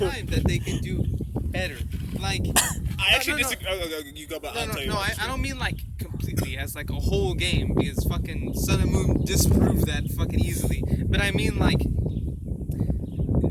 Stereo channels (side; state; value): both; identical; correlation 1.00